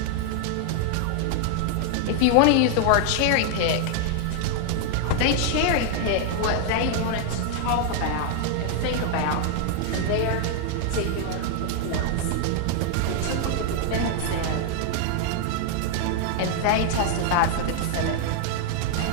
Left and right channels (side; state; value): both; different; correlation 0.00